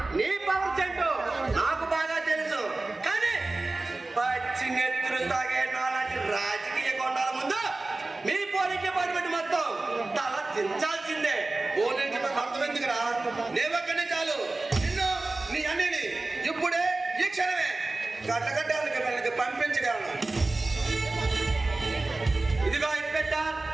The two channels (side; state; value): left; quieter; 3.2 dB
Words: నీ పవర్ చెంటు నాకు బాగా తెలుసు. కానీ పచ్చి నెత్తులు తాగే నాలాంటి రాజకీయ కొండాల ముందు మీ పోలీస్ డిపార్ట్మెంట్ మొత్తం తల దించాల్సిందే. పోలీసు అర్థమెందుకురా? నేవక్కనే చాలు నిన్ను నీ అన్నిని ఇప్పుడే ఈ క్షణమే గడ్డగడ్డాలకి మనకి పంపించగలను. ఇదిగో ఇన్స్పెక్టర్,